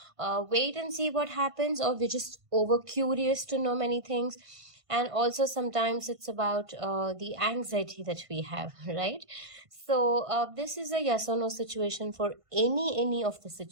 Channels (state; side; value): late; left; 1.5 ms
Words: wait and see what happens, or we're just over curious to know many things. And also sometimes it's about the anxiety that we have, right? So this is a yes or no situation for any of the